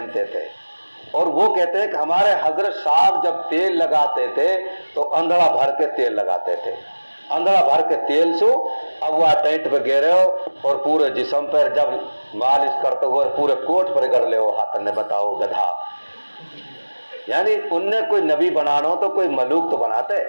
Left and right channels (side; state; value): both; inverted; correlation -1.00